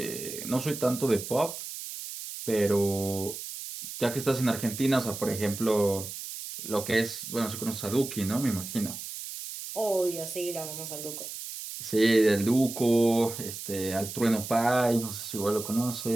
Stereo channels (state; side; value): noise; right; hiss, 9 dB below the sound